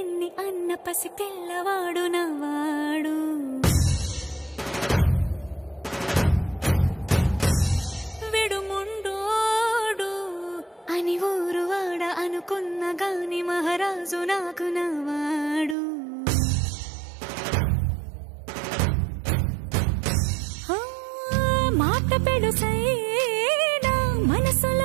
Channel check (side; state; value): left; drops out; at 15.8 s